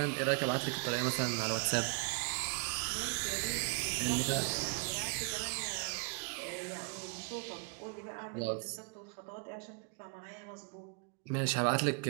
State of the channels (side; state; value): left; quieter; 36.0 dB